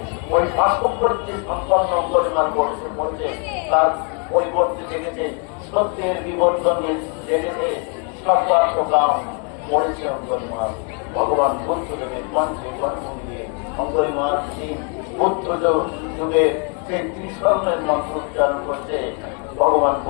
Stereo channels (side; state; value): right; quieter; 38.4 dB